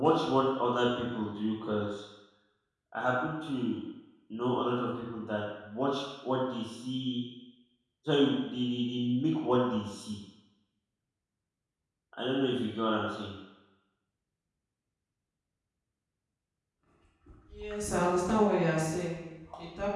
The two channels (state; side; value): identical; both; correlation 1.00